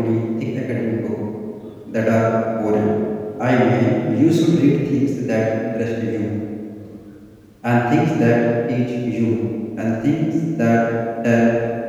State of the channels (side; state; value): both; identical; correlation 1.00